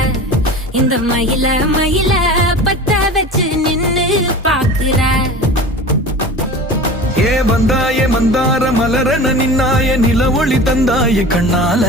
இந்த மயில மயில பத்த வச்சு நின்னு பாக்குற. ஏ வந்தாய மந்தார மலரன நின்னாய நில ஒளி தந்தாய கண்ணால.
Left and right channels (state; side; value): normal; both; correlation 0.35